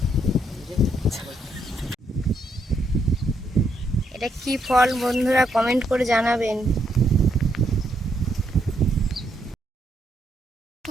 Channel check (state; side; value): normal; both; correlation 0.76